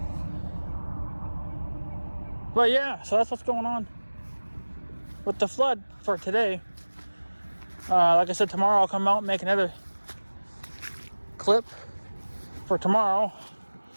But yeah, so that's what's going on with the flood for today. Like I said, tomorrow I'll come out and make another clip for tomorrow.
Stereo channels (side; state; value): both; inverted; correlation -1.00